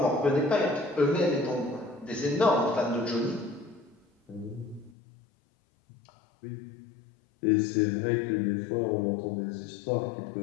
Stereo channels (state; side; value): drops out; right; at 5.0 s